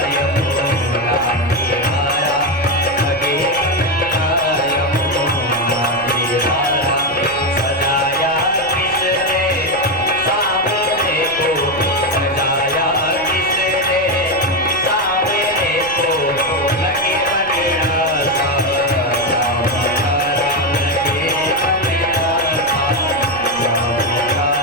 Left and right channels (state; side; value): noise; left; rumble, 21 dB below the sound